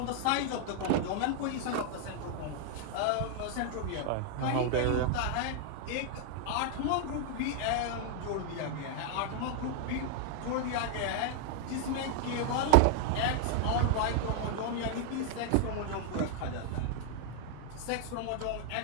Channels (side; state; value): both; different; correlation 0.00